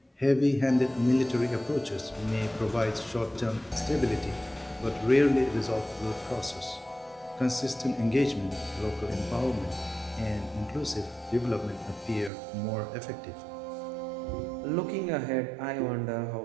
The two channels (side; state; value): left; drops out; at 12.3 s